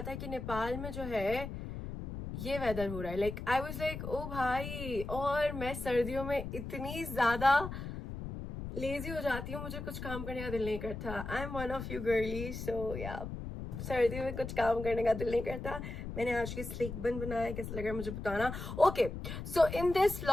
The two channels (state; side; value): noise; left; rumble, 7 dB below the sound